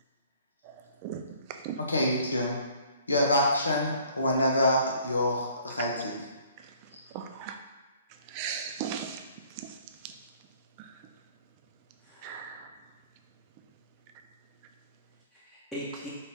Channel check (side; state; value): both; inverted; correlation -0.57